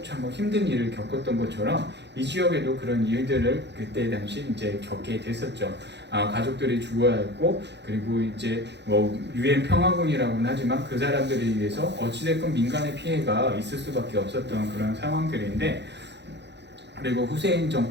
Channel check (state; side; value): late; left; 0.50 ms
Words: 참 힘든 일을 겪었던 것처럼 이 지역에도 그런 일들을 그때 당시 이제 겪게 됐었죠. 가족들이 죽어야 했고 그리고 이제 유엔 평화군이라고는 하지만 그 사람들에 의해서 어찌됐건 민간의 피해가 있을 수밖에 없었던 그런 상황들인데 그리고 후세인